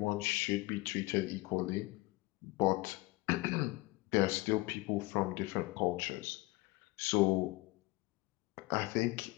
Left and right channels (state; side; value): quieter; right; 21.6 dB